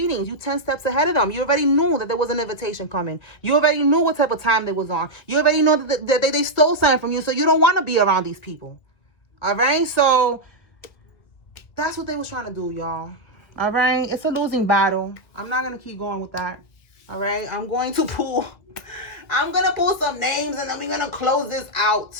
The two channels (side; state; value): right; late; 1.7 ms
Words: You 10 steps ahead of them. You already knew that there was an invitation coming. You already knew what type of time they was on. You already know that they stole something from you, so you don't want to be around these people. All right? So that's what they was trying to do, y'all. All right? It's a losing battle. I'm not going to keep going with that. All right? I'm going to pull some names and then we're going to close this out.